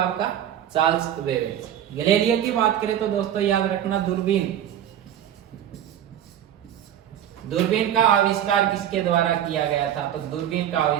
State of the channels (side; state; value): left; quieter; 10.6 dB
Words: आपका? Charles Babbage. गैलीलियो की बात करें तो दोस्तों याद रखना दूरबीन का आविष्कार किसके द्वारा किया गया था? तो दूरबीन का